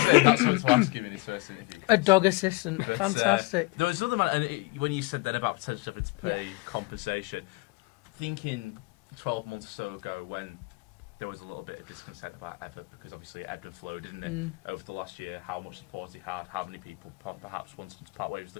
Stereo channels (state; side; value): quieter; right; 25.3 dB